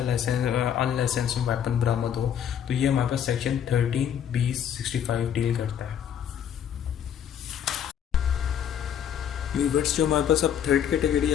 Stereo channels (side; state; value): right; quieter; 9.1 dB